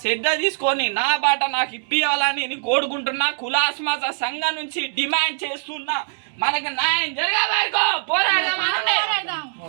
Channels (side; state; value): left; silent; digital silence